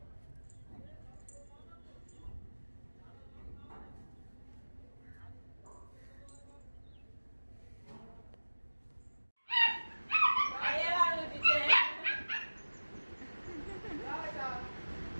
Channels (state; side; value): inverted; both; correlation -1.00